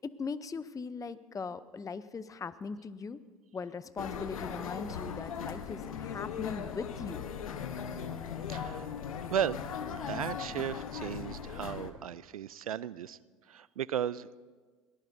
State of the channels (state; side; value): normal; both; correlation 0.31